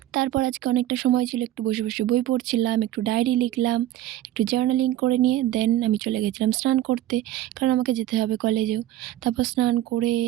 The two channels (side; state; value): left; quieter; 13.8 dB